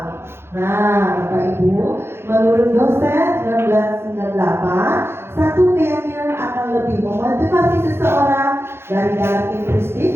Nah, Bapak Ibu, menurut dosen 1998, satu keyakinan akan lebih memotivasi seseorang dari dalam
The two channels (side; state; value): left; late; 0.12 ms